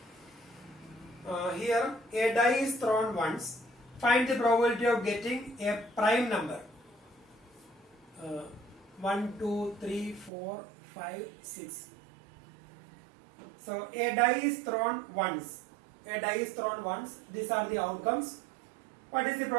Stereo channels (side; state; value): left; drops out; at 10.3 s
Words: Here a die is thrown once. Find the probability of getting a prime number. 1, 2, 3, 4, 5, 6. So a die is thrown once. A die is thrown once. These are the outcomes. What is the